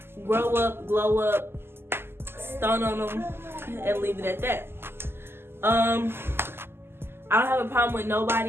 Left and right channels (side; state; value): left; late; 0.12 ms